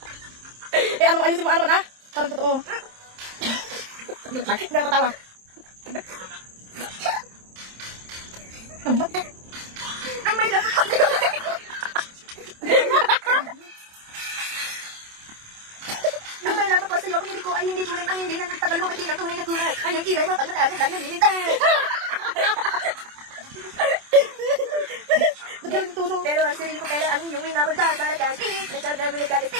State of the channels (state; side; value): late; left; 27 ms